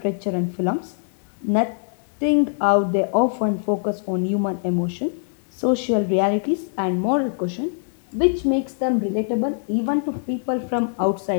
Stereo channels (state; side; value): silent; right; digital silence